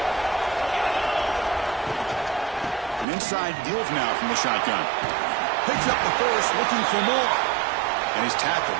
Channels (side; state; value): left; drops out; at 3.1 s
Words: An inside deal now from the shotgun. Picks up the first, looking for more. And he's